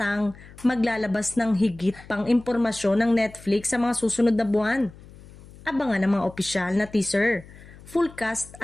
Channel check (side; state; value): left; noise; hum, 20 dB below the sound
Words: maglalabas ng higit pang impormasyon ng Netflix sa mga susunod na buwan. Abangan ang mga opisyal na teaser, full cast